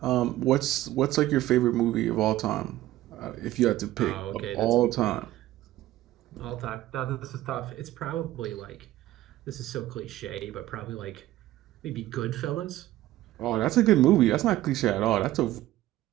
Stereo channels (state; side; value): quieter; left; 15.3 dB